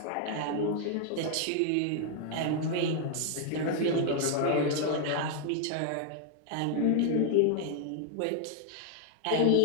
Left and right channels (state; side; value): different; both; correlation 0.00